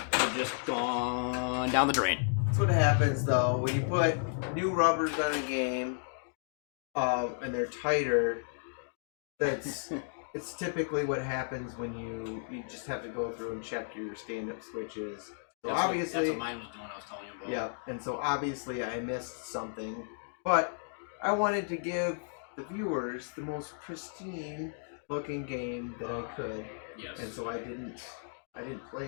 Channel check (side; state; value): right; silent; digital silence